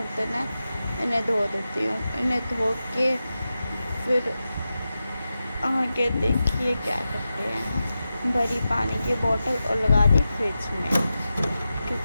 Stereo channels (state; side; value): inverted; both; correlation -0.92